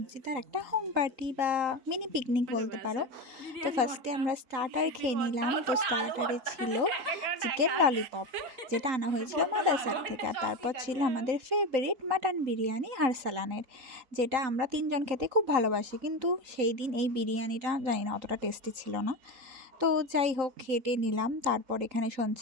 একটা হোম পার্টি বা মিনি পিকনিক বলতে পারো। তো ফার্স্টে আমরা স্টার্টার খেয়ে নিলাম। তো স্টার্টারে ছিল চিকেন ললিপপ, যেটা আনা হয়েছিল মাদারসার থেকে। আর তারপর ছিল আমাদের ফেভারিট মাটন বিরিয়ানি আরসালানের, যেটা আমরা তিনজন খেতে খুব ভালোবাসি। কিন্তু সেই দিন এই বিরিয়ানিটা জানি না অতটা টেস্টি ছিল না। তো যাই হোক, খেটে নিলাম। তারপর এখানে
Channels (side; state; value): left; late; 3.8 ms